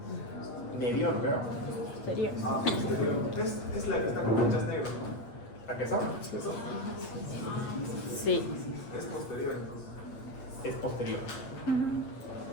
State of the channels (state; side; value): late; right; 8.2 ms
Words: Medio, no creo. Es la que está con manchas negras. ¿A qué son? Sí. Es posterior entonces. Es posterior.